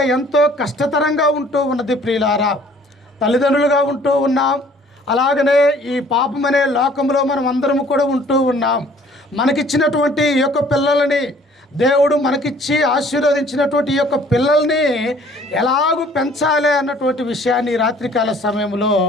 ఎంతో కష్టతరంగా ఉంటూ ఉన్నది. ప్రియులారా, తల్లిదండ్రులుగా ఉంటూ ఉన్నాం. అలాగనే ఈ పాపమనే లోకంలో మనం అందరం కూడా ఉంటూ ఉన్నాం. మనకిచ్చినటువంటి ఈ యొక్క పిల్లలని దేవుడు మనకిచ్చి ఆశీర్వదించినటువంటి ఈ యొక్క పిల్లల్ని ఎలాగూ పెంచాలి అన్నటువంటి విషయాన్ని రాత్రికాల సమయంలో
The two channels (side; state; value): both; normal; correlation 0.56